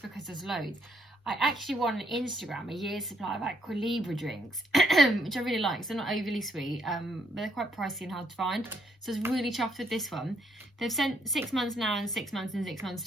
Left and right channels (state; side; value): normal; both; correlation 0.72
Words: because there's loads. I actually won on Instagram a year's supply of Aqua Libra drinks, which I really like. So they're not overly sweet, but they're quite pricey and hard to find. So I was really chuffed with this one. They've sent 6 months now and 6 months in 6 months